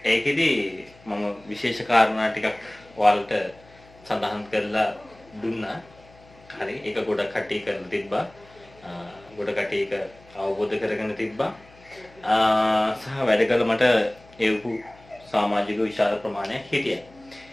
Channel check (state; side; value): noise; left; hum, 26 dB below the sound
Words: ඒකෙදි මම විශේෂ කාරණා ටිකක් ඔයාලට සඳහන් කරලා දුන්නා. හරි ඒක ගොඩක් කට්ටිය කරලා තිබ්බා. ගොඩ කට්ටිය ඒක අවබෝධ කරගෙන තිබ්බා. සහ වැඩ කළ මට ඒවු සමාජික විශාල ප්‍රමාණයක් හිටියා.